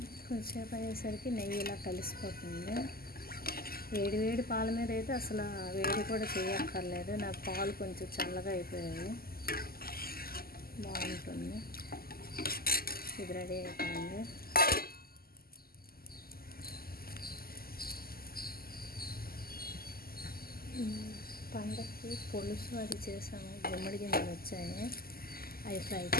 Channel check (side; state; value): right; late; 0.43 ms